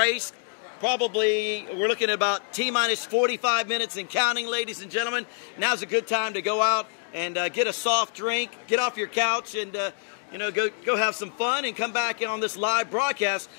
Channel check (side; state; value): right; silent; 61 dB below the other